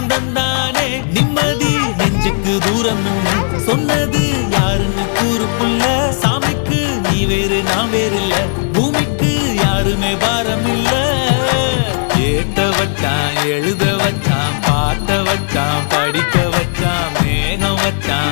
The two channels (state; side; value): silent; right; digital silence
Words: தந்தானே நிம்மதி நெஞ்சுக்கு தூரம் சொன்னது யாருன்னு கூறு புள்ள சாமிக்கு நீ வேறு நான் வேறு இல்ல பூமிக்கு யாருமே பாரம் இல்ல ஏட்ட வச்சான் எழுத வச்சான் பாட்ட வச்சான் படிக்க வச்சான் மேகம்